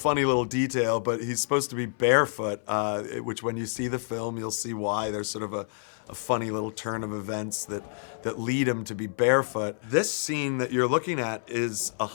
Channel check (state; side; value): silent; right; 59 dB below the other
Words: little detail, but he's supposed to be barefoot, which when you see the film, you'll see why. There's sort of a funny little turn of events that lead him to be barefoot. This scene that you're looking at is